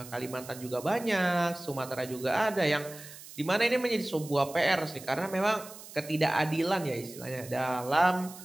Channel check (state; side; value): noise; right; hiss, 16 dB below the sound